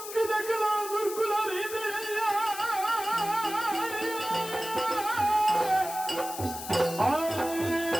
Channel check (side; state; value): left; noise; hiss, 10 dB below the sound